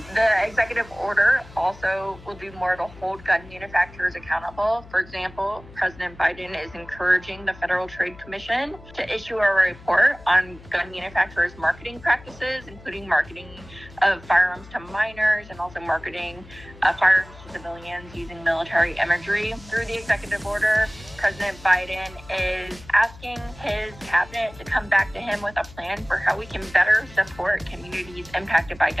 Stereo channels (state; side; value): noise; left; hum, 20 dB below the sound